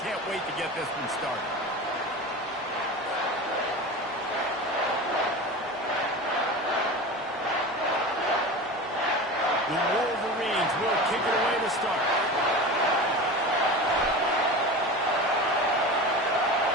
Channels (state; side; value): normal; both; correlation 0.30